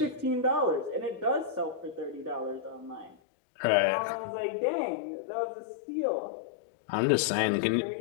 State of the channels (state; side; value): drops out; right; at 3.2 s